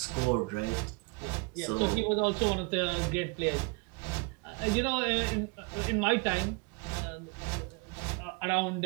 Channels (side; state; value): left; quieter; 29.5 dB